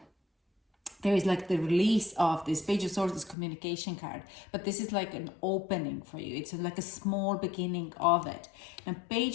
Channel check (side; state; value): right; drops out; at 3.4 s